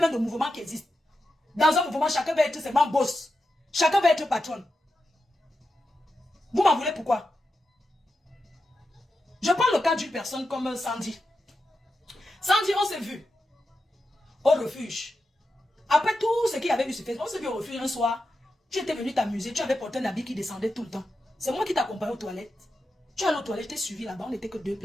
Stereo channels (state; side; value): normal; both; correlation 0.89